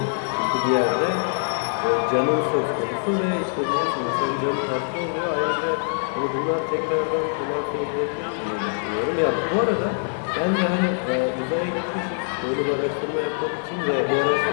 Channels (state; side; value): silent; right; digital silence